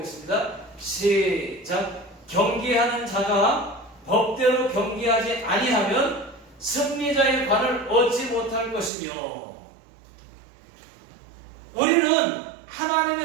시작. 경기하는 자가 법대로 경기하지 아니하면 승리자의 관을 얻지 못할 것이며, 우리는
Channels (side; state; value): left; drops out; at 8.9 s